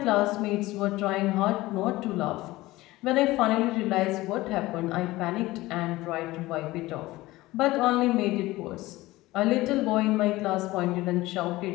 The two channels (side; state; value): right; quieter; 18.6 dB